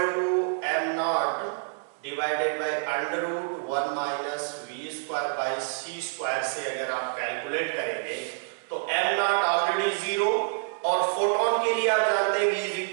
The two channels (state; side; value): silent; left; digital silence